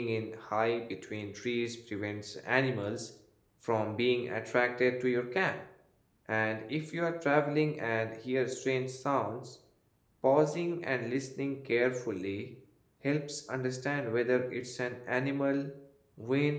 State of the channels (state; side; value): identical; both; correlation 1.00